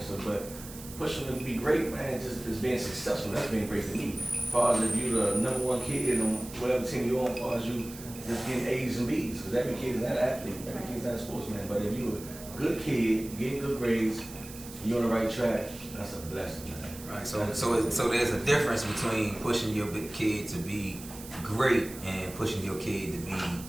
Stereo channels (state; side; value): noise; right; hiss, 15 dB below the sound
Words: So, but pushing them to be great, man, just being successful. That's being great to me. As far as if you're the #1 kid on whatever team you're on, as far as you just getting A's and B's, because every kid is not an athlete, every kid is not a sportsman. But if you're a good kid, getting good grades, you're on the right track, that's a blessing, man. Right. So there's a difference between pushing your kid to be great and pushing your kid to be